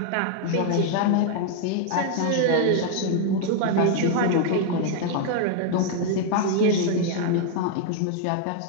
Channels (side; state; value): both; different; correlation 0.00